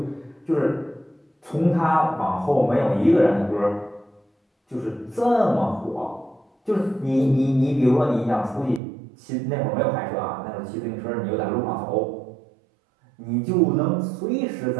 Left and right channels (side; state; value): left; drops out; at 8.8 s